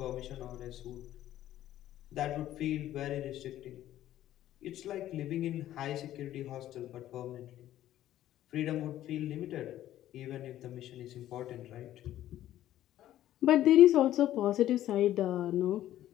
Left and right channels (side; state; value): right; quieter; 13.0 dB